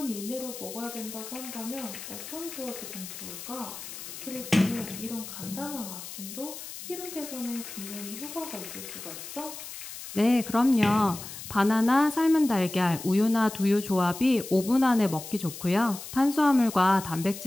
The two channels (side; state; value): left; noise; hiss, 11 dB below the sound